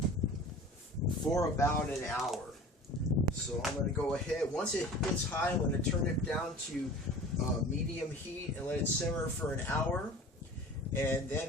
for about an hour. So I'm going to go ahead. Once it gets high, I'm going to turn it down to medium heat and let it simmer for an hour, and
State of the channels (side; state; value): both; normal; correlation 0.41